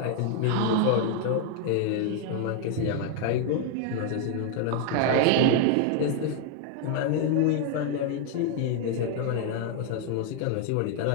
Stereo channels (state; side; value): different; both; correlation 0.00